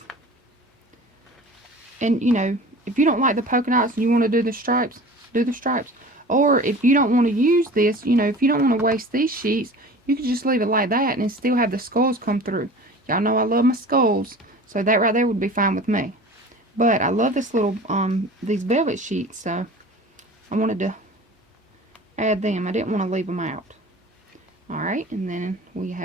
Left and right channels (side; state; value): both; normal; correlation 0.40